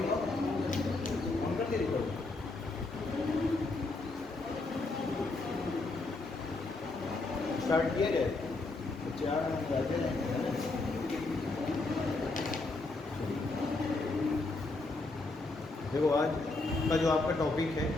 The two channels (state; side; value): quieter; right; 3.3 dB